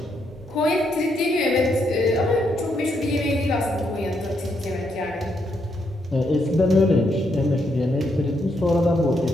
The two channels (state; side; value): normal; both; correlation 0.77